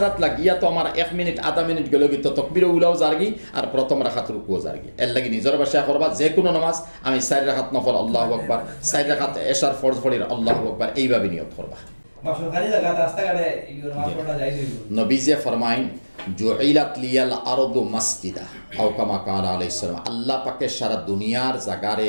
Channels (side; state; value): both; inverted; correlation -1.00